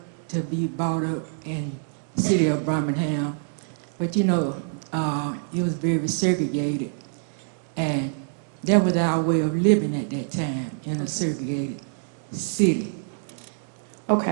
be brought up in the city of Birmingham. But it was very segregated. And that was our way of living at that time in a segregated city.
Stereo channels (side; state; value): left; silent; digital silence